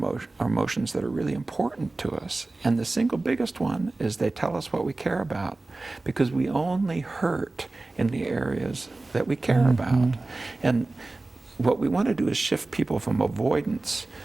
emotions that are really important to us, and the single biggest one is they tell us what we care about, because we only hurt in the areas that we care about. And what we want to do is shift people from avoidance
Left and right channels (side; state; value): left; quieter; 3.1 dB